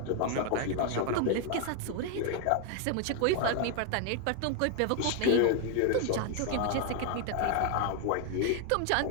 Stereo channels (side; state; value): both; different; correlation 0.00